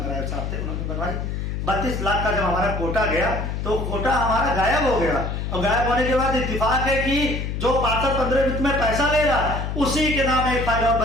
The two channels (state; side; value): noise; left; hum, 3 dB below the sound